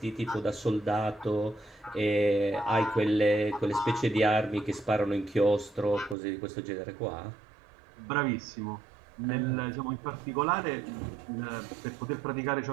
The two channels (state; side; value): drops out; left; at 6.2 s